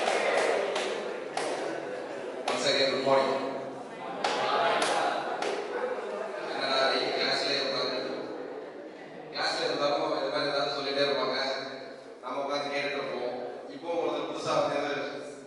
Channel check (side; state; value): both; identical; correlation 1.00